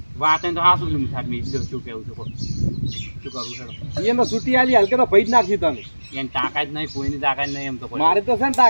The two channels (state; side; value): inverted; both; correlation -1.00